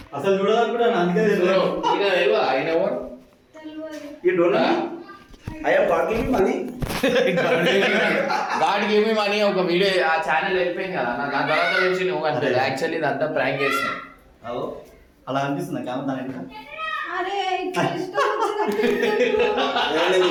అసలు చూడాలనుకుంటాను అందుకే So, తెలియదు. ఈయన తెలియదా? ఆయన ఎవరు? You don't know me? I am God giving money. God give me money ఒక వీడియో ఆ ఛానల్ వెళ్ళిపోయింది కదా నా తర్వాత తెలిసి నువ్వు అంటే యాక్చువల్లీ ఇదంతా ప్రాంక్ చేస్తాను. అవు అలా అనిపిస్తుంది కెమెరా దాని వెనక. అరే ఇట్లా ఇష్టం వచ్చినట్టు నేను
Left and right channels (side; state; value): both; identical; correlation 1.00